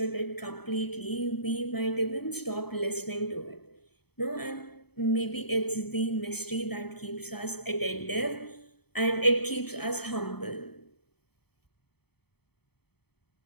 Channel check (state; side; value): late; right; 0.97 ms